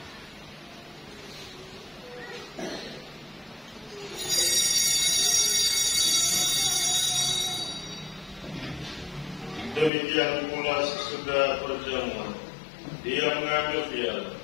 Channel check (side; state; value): right; drops out; at 9.9 s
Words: Demikian pula sesudah perjamuan, Dia mengambil piala.